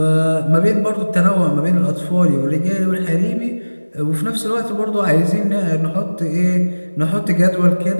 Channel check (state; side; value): inverted; both; correlation -1.00